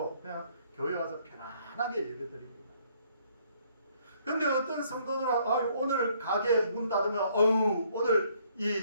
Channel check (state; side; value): inverted; both; correlation -0.65